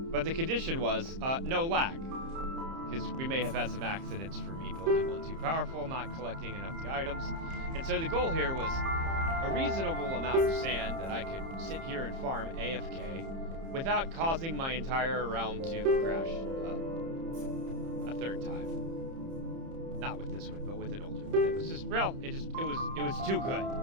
But the condition was, no lag. Because we may have had some accidents for me building one too powerful, not collecting enough of the items. And so the goal here was a reasonable amount of sand that I could sit here and farm AFK without causing my entire realm to crash a third time. Not with this one, but with an older one. It was just, well, it was too good.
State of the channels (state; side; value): late; left; 30 ms